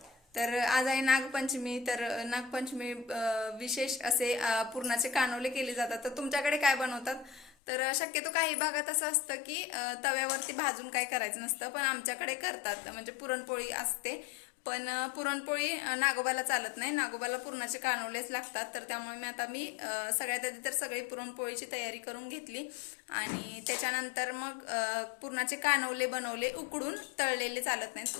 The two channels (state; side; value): drops out; right; at 7.5 s